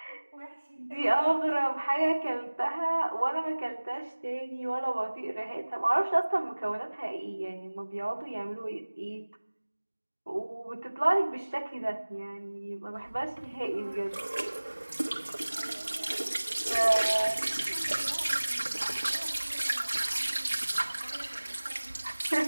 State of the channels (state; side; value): inverted; both; correlation -1.00